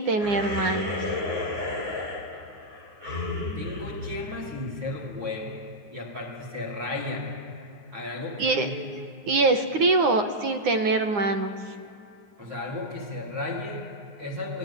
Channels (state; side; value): late; left; 9.7 ms